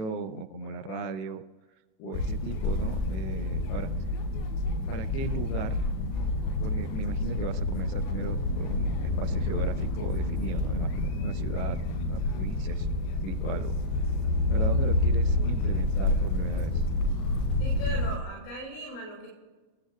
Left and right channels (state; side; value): late; right; 38 ms